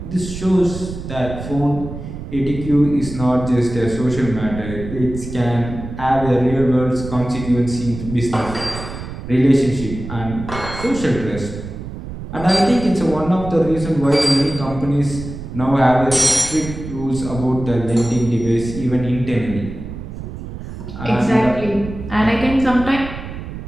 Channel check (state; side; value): noise; right; rumble, 10 dB below the sound